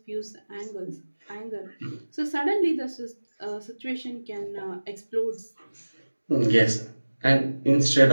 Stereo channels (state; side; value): inverted; both; correlation -1.00